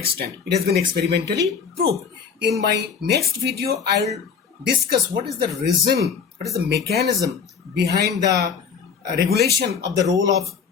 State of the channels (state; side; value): quieter; right; 6.4 dB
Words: It has been experimentally proved. In my next video, I will discuss what is the reason, what is the mechanism behind the regulation of the role of